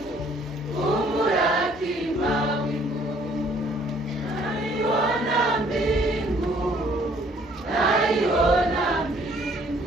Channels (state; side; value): normal; both; correlation 0.61